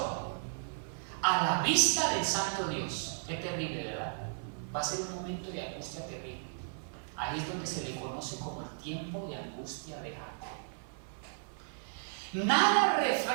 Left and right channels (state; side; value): silent; left; 55 dB below the other